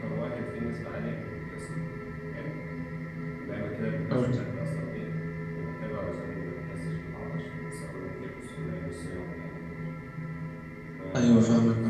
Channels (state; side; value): noise; right; rumble, 25 dB below the sound